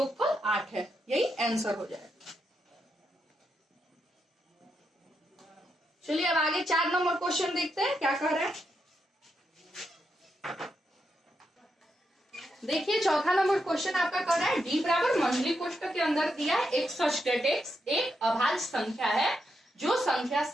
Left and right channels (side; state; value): both; normal; correlation 0.83